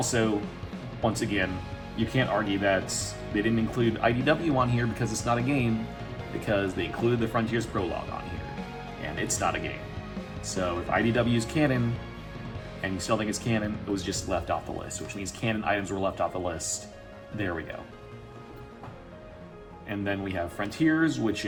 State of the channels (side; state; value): both; identical; correlation 1.00